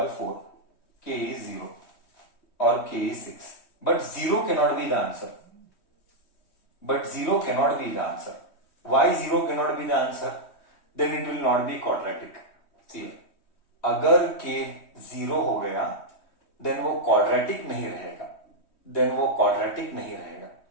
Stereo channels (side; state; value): right; late; 3.1 ms